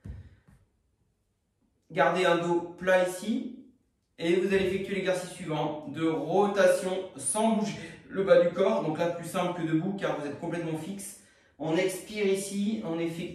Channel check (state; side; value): identical; both; correlation 1.00